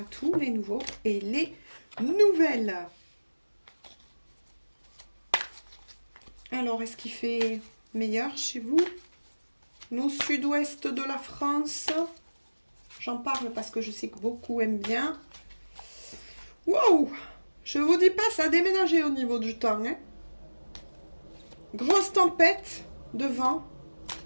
tous les nouveaux et les nouvelles. Alors, est-ce qu'il fait meilleur chez vous? Nous, sud-ouest de la France, j'en parle parce que je sais que beaucoup aiment bien. Wow! Je vous dis pas, ça a déménagé au niveau du temps. Hein. Grosse tempête de vent.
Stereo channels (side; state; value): both; inverted; correlation -1.00